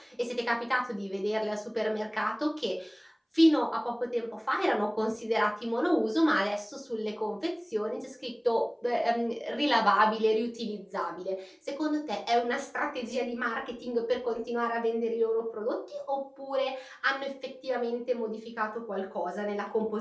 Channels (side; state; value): both; identical; correlation 1.00